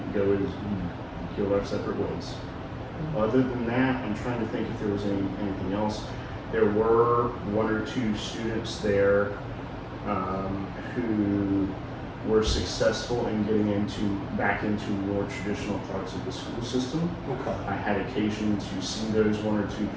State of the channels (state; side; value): identical; both; correlation 1.00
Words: go our separate ways. Other than that, I'm trying to think if there was anything else. There were one or two students there who were successful in getting back into more traditional parts of the school system. Okay. I had occasion to see those one or two